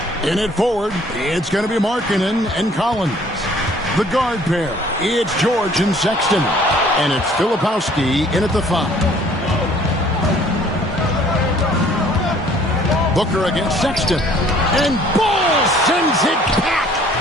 In it forward, it's going to be Markkanen and Collins. The guard pair, it's George and Sexton. And it's Filipowski in at the 5. Booker against Sexton. And Ball sends it back.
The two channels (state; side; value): normal; both; correlation 0.57